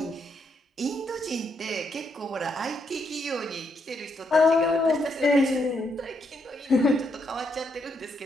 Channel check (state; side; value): normal; both; correlation 0.77